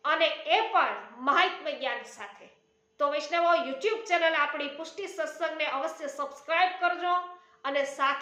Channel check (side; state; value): both; identical; correlation 1.00